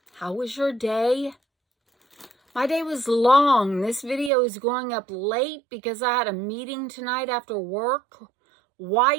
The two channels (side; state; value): left; drops out; at 4.3 s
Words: How was your day? My day was long. This video is going up late because I had a meeting tonight after work. Why